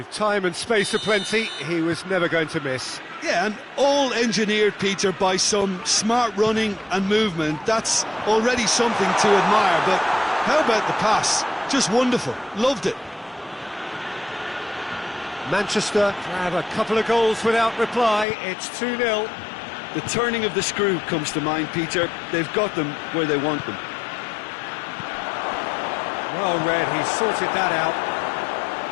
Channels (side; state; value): right; drops out; at 18.2 s